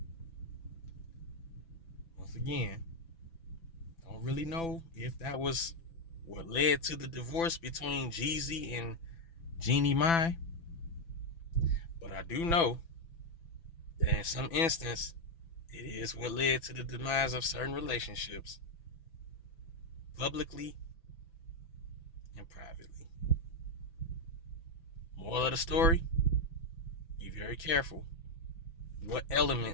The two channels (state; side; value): late; right; 6.0 ms